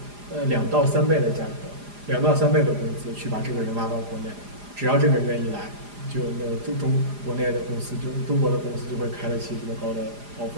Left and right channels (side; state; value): left; late; 4.9 ms